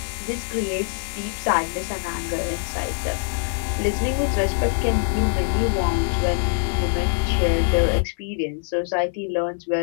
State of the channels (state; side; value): silent; right; digital silence